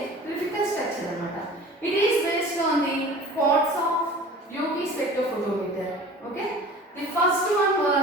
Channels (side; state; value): both; normal; correlation 0.42